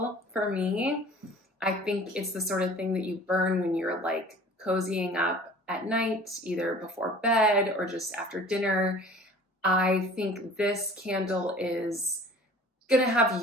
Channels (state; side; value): normal; both; correlation 0.46